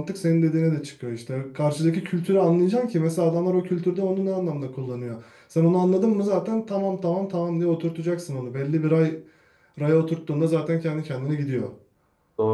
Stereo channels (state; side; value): identical; both; correlation 1.00